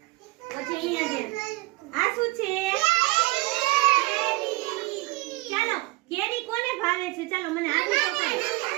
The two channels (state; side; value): quieter; left; 21.7 dB